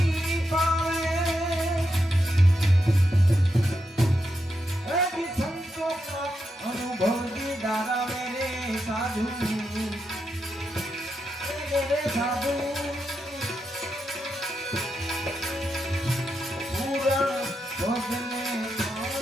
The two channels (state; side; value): normal; both; correlation 0.85